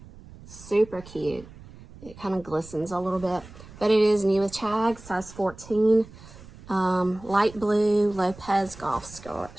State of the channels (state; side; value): noise; right; rumble, 19 dB below the sound